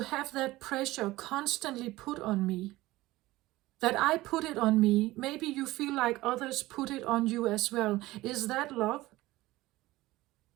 have that pressure constantly put on me? That I put it on me, maybe you feel like others put it on you as well. Is that love?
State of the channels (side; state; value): left; quieter; 18.1 dB